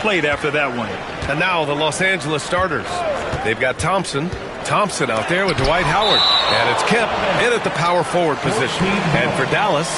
after that one. And now the Los Angeles starters. They've got Thompson out there with Dwight Howard. And it's Kemp in at the power forward position. And for Dallas,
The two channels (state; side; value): identical; both; correlation 1.00